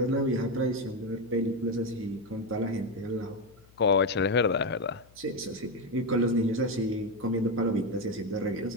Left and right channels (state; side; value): noise; left; hum, 27 dB below the sound